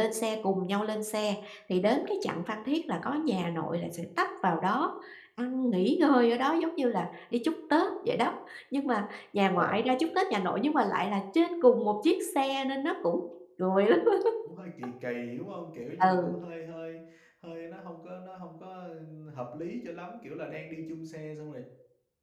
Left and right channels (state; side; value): identical; both; correlation 1.00